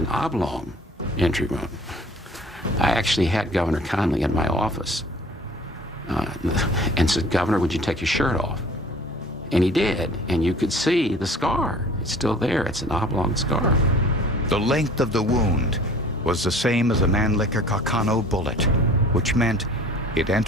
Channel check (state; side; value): normal; both; correlation 0.48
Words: oblong entry wound. I actually had Governor Connally in my office and said, "Governor, would you take your shirt off?" And he did, and you could see the scar. It's still there. It's an oblong scar. The length of the wound was the same as a Mannlicher Carcano bullet, which meant it